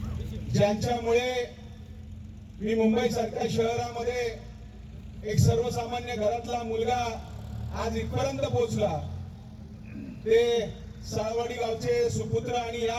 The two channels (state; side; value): identical; both; correlation 1.00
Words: ज्यांच्यामुळे मी मुंबई सारख्या शहरामध्ये एक सर्वसामान्य घरातला मुलगा आज इथपर्यंत पोहोचला, ते साळवाडी गावचे सुपुत्र आणि